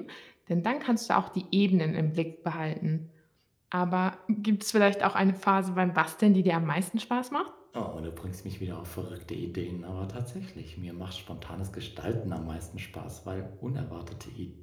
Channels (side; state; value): both; identical; correlation 1.00